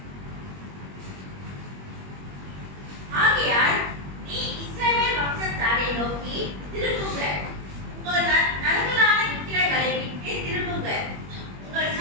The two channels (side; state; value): left; late; 21 ms